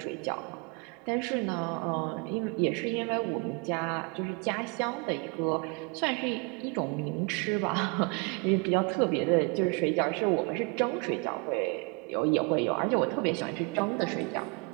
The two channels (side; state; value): left; quieter; 30.9 dB